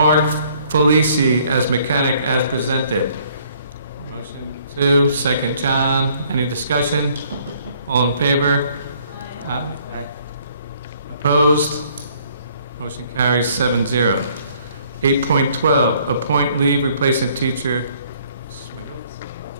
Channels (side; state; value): both; inverted; correlation -0.62